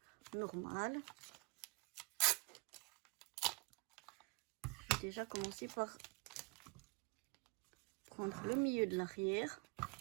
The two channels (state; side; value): quieter; left; 31.4 dB